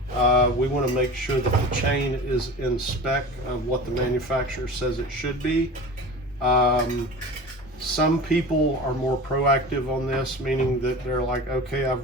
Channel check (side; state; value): both; normal; correlation 0.34